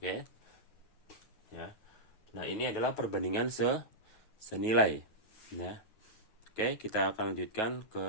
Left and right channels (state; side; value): late; right; 9.3 ms